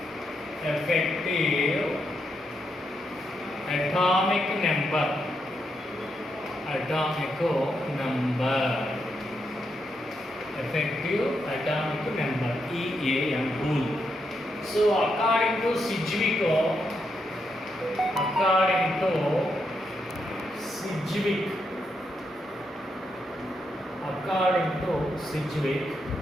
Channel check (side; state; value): both; normal; correlation 0.81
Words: atomic number. Effective atomic number, EAN rule. So according to Sedgwick,